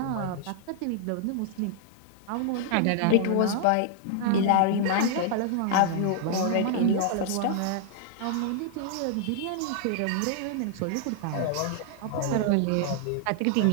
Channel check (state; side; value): different; both; correlation -0.01